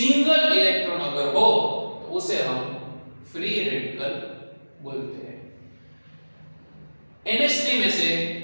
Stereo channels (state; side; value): inverted; both; correlation -1.00